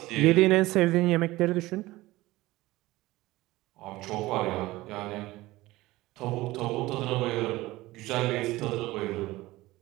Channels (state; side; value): quieter; left; 18.6 dB